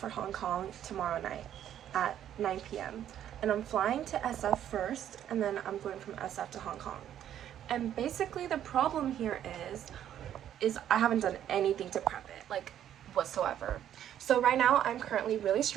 Hong Kong tomorrow night at 9 p.m. And I'm flying to SF first, and then I'm going from SF to Hong Kong. And basically the problem here is I haven't done anything to prep it, like whatsoever. So right now I'm currently really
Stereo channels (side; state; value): left; quieter; 10.7 dB